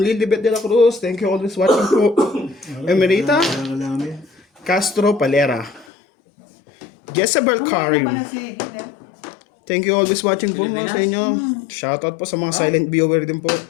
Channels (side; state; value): right; drops out; at 5.9 s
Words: Lilibet de la Cruz. Thank you always watching po. Emerita Kailangan namin. Castro Palera. Jezebel Karim. Thank you always watching po Pilipinas? sa inyo. Shoutout po sa mga silent viewer din po.